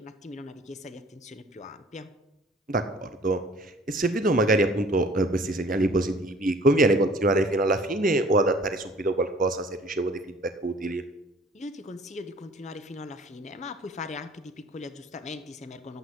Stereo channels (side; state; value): both; normal; correlation 0.52